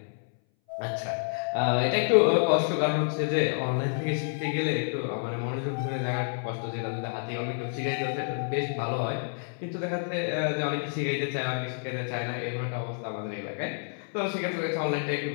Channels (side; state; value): right; silent; 59 dB below the other